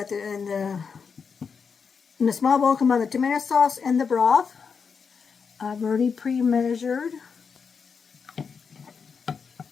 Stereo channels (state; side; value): quieter; right; 5.9 dB